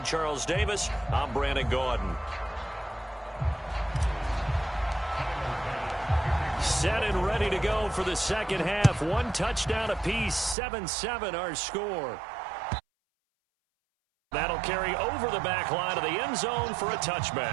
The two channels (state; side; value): drops out; left; at 10.6 s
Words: Charles Davis, I'm Brandon Gordon. Set and ready to go for the second half. 1 touchdown apiece. 7-7 our score. That'll carry over the back line of the end zone for a